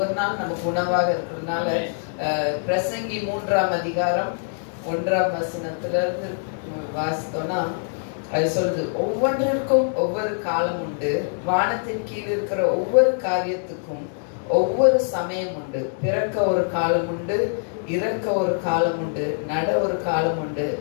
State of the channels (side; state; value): right; silent; 63 dB below the other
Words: நாள் நமக்கு உணவாக இருக்கிறதுனால பிரசங்கி 3ஆம் அதிகாரம் 1ஆம் வசனத்துல இருந்து வாசித்தோம்னா அது சொல்லுது, ஒவ்வொன்றிற்கும் ஒவ்வொரு காலம் உண்டு, வானத்தின் கீழ் இருக்கிற ஒவ்வொரு காரியத்துக்கும் ஒவ்வொரு சமயம் உண்டு. பிறக்க ஒரு காலம் உண்டு, இறக்க ஒரு காலம் உண்டு, நட ஒரு காலம் உண்டு,